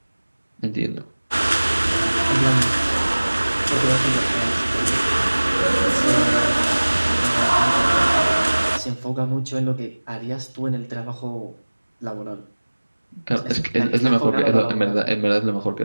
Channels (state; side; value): inverted; both; correlation -1.00